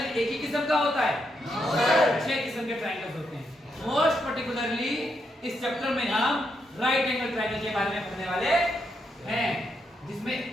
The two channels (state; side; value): normal; both; correlation 0.80